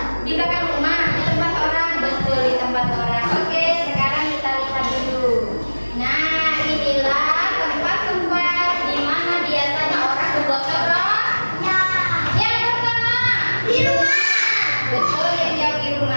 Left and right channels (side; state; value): both; inverted; correlation -1.00